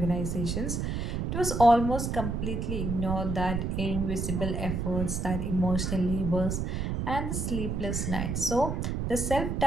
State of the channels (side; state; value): right; noise; rumble, 1 dB below the sound